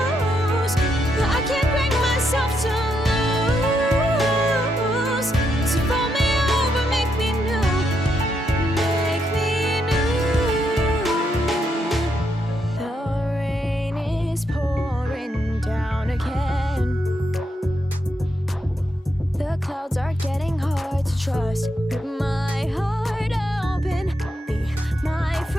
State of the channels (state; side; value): normal; both; correlation 0.80